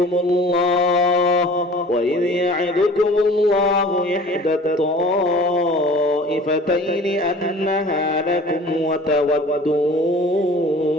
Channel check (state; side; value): normal; both; correlation 0.45